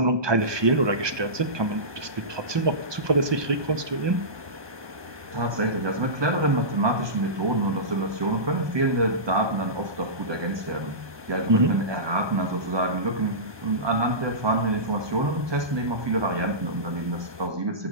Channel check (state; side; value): late; left; 1.2 ms